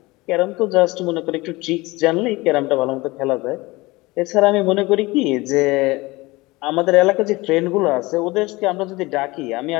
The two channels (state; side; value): quieter; right; 22.0 dB